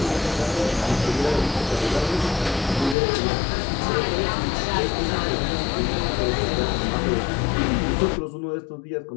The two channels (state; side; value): drops out; right; at 3.0 s